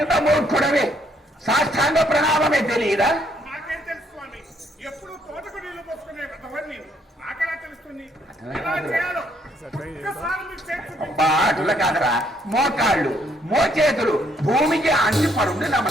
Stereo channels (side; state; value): both; normal; correlation 0.69